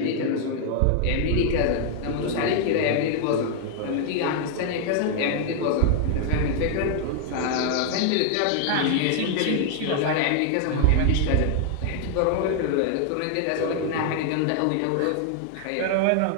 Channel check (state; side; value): different; both; correlation 0.00